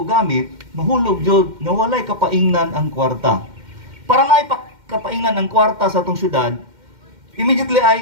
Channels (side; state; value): left; late; 2.1 ms